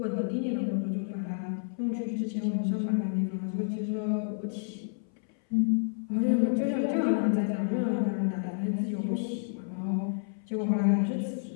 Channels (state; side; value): silent; right; 58 dB below the other